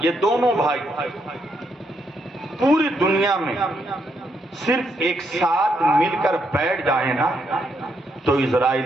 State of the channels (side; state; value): both; normal; correlation 0.77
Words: یہ دونوں بھائی پوری دنیا میں صرف ایک ساتھ مل کر بیٹھ جائیں نا تو